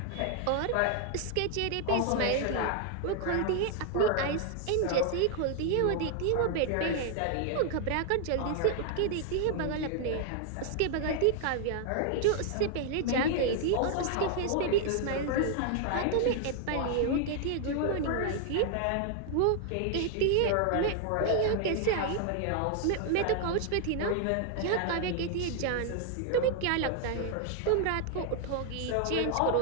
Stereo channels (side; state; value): both; different; correlation 0.00